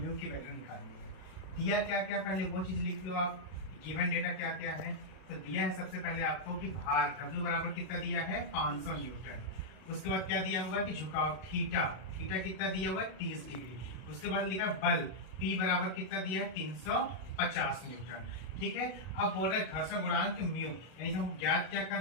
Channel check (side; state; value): right; late; 32 ms